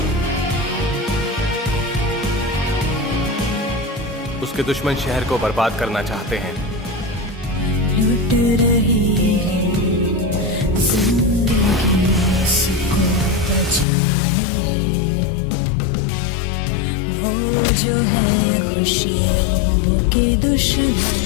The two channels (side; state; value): right; drops out; at 13.9 s